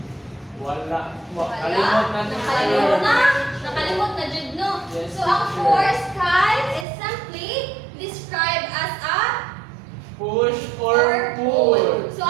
Wala. Wala. Kalimot na, Nakalimot na. teacher. Nakalimot na jud no. Yes, So ang teacher. force kay is simply described as a Push or pull. So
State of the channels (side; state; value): left; drops out; at 6.9 s